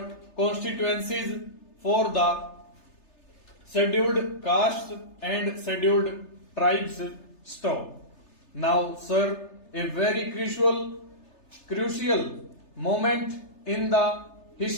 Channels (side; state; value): right; late; 3.3 ms